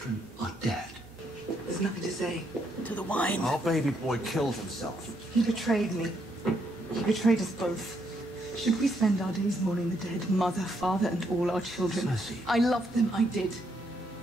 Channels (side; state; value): both; normal; correlation 0.75